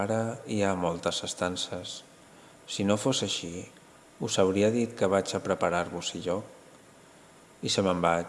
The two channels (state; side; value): identical; both; correlation 1.00